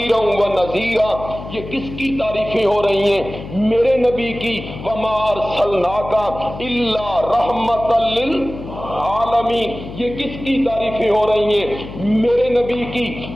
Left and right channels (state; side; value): noise; left; hum, 12 dB below the sound